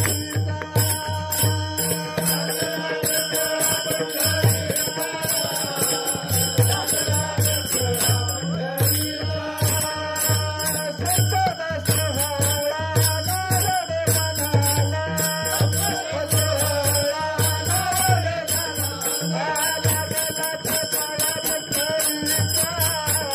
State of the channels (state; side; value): identical; both; correlation 1.00